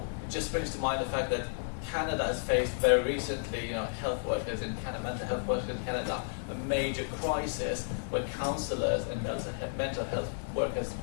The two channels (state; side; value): silent; right; digital silence